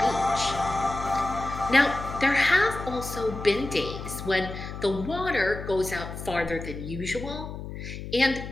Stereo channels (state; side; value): noise; left; hum, 9 dB below the sound